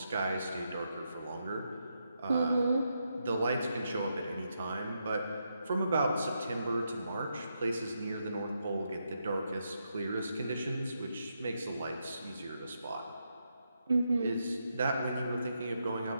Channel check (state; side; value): inverted; both; correlation -0.82